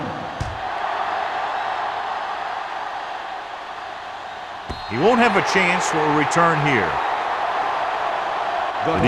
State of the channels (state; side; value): identical; both; correlation 1.00